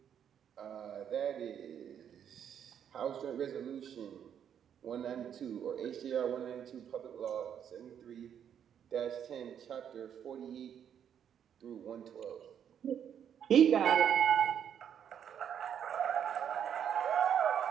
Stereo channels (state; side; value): quieter; left; 8.8 dB